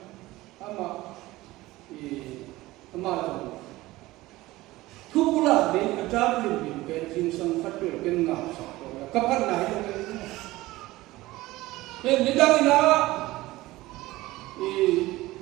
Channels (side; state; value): left; quieter; 18.4 dB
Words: ama rồi thuốc là đi ăn tráp liền liền cái chính sang phát biểu cái ngạo sọc rồi cấp phát này nên những cái đó